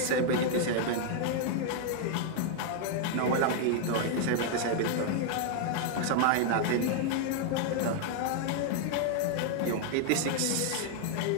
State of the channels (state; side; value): different; both; correlation 0.00